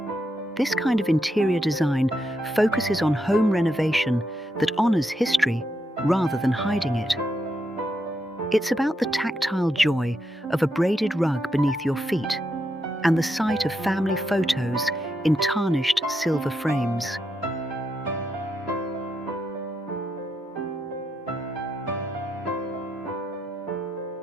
This kind of interior design focuses on home renovation that honors history rather than hiding it. It's about the tactile joy of a braided rug beneath your feet and the sight of family photos in tarnished silver frames.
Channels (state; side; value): normal; both; correlation 0.82